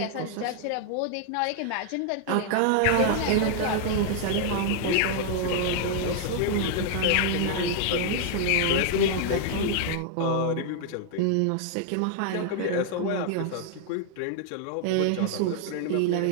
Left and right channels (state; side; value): different; both; correlation 0.00